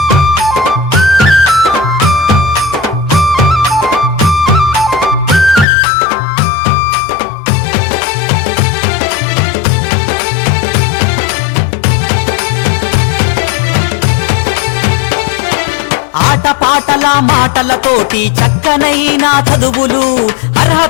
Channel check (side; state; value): right; drops out; at 5.7 s